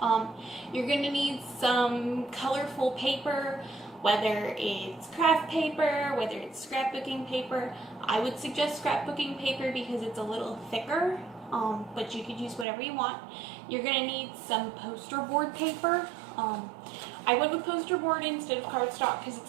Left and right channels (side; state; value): left; drops out; at 12.7 s